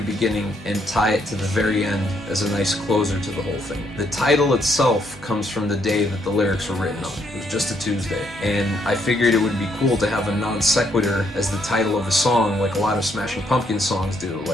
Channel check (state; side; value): normal; both; correlation 0.72